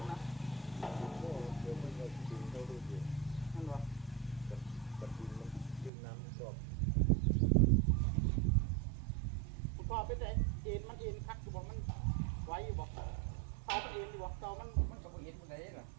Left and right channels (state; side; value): drops out; left; at 5.9 s